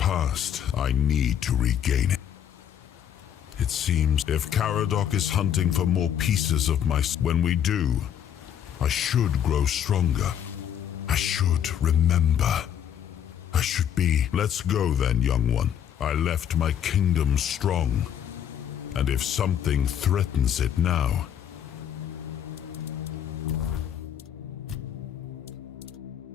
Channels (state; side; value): quieter; right; 9.6 dB